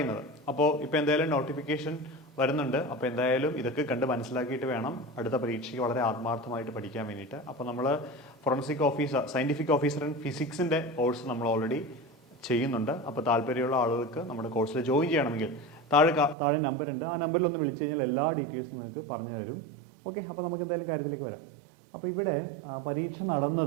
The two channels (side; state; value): left; drops out; at 16.4 s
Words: അപ്പോൾ ഇപ്പോൾ എന്തായാലും നോട്ടിഫിക്കേഷൻ വരുന്നുണ്ട്. അപ്പോൾ എന്തായാലും ഇതൊക്കെ കണ്ട് മനസ്സിലാക്കിയിട്ട് വേണം അടുത്ത പരീക്ഷയ്ക്ക് വളരെ ആത്മാർത്ഥമായിട്ട് പഠിക്കാൻ വേണ്ടിയിട്ട്. അപ്പോൾ നമ്മൾ forensic officer, scientific officer in ഫിസിക്സിൻ്റെ കോഴ്സ് നമ്മൾ ഓൾറെഡി ചെയ്യുന്നുണ്ട്. അപ്പോൾ താല്പര്യമുള്ള ആളുകൾക്ക് നമ്മുടെ കോഴ്സിൽ ജോയിൻ ചെയ്യണമെങ്കിൽ താഴെ നമ്പർ ഉണ്ട്. ആ നമ്പറിൽ ഒന്ന് വിളിച്ചു കഴിഞ്ഞാൽ എല്ലാ ഡീറ്റെയിൽസും നിങ്ങൾക്ക് പറഞ്ഞു തരും. ഓക്കെ, അപ്പോൾ നമുക്ക് എന്തായാലും കാര്യത്തിലേക്ക് വരാം. അപ്പോൾ ഇവിടെ പരീക്ഷ